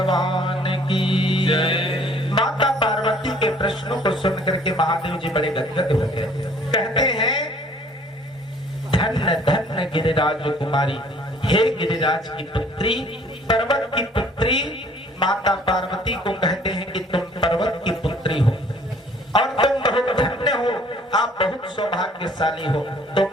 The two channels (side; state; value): both; normal; correlation 0.57